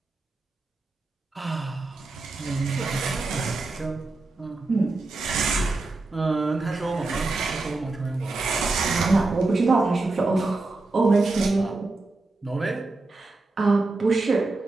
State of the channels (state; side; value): quieter; left; 3.3 dB